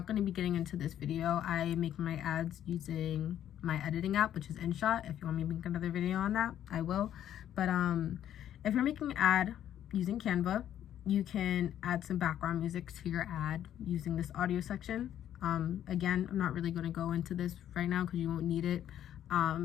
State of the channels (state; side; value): quieter; right; 10.9 dB